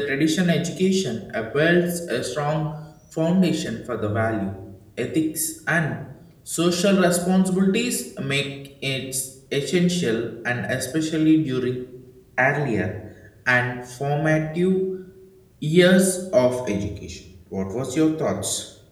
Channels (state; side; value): identical; both; correlation 1.00